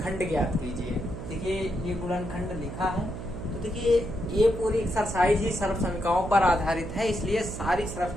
ज्ञात कीजिए। देखिए ये गुणनखंड लिखा है, तो देखिए ये पूरी एक्सरसाइज ही सर्वसमीकाओं पर आधारित है, इसलिए सारी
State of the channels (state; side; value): noise; right; hum, 8 dB below the sound